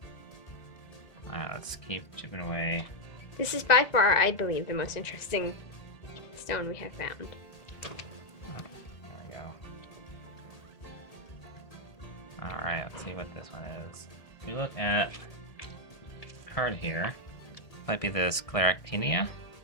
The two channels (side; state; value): right; late; 2.0 ms